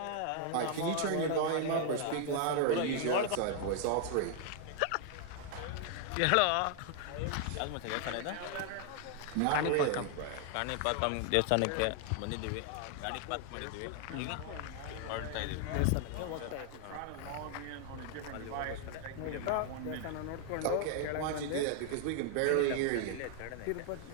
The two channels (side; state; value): both; different; correlation 0.00